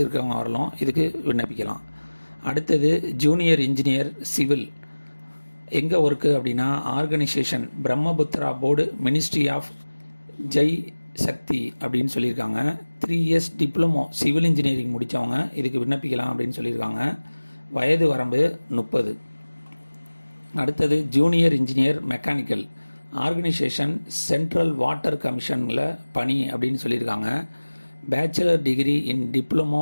இருக்கிறவங்க வரலாம் இதுக்கு விண்ணப்பிக்கலாம். அடுத்தது ஜூனியர் இன்ஜினியர் சிவில். எங்கே ஒர்க்கு அப்படின்னா, organisation Brahmaputra board ministry of Jai Shakti அப்படின்னு சொல்லியிருக்காங்க. 3 இயர்ஸ் டிப்ளமோ சிவில் இன்ஜினியரிங் முடித்தவங்க இதுக்கு விண்ணப்பிக்கலாம் அப்படின்னு சொல்லியிருக்காங்க. வயது வரம்பு 30. அடுத்தது junior engineer mechanical. Organisation central water கமிஷனில் பணி அப்படின்னு சொல்லியிருக்காங்க. Bachelor degree in diploma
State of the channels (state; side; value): inverted; both; correlation -1.00